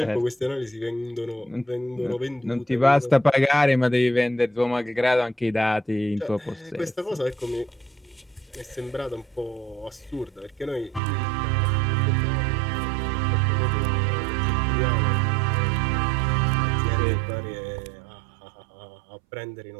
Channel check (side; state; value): left; drops out; at 11.0 s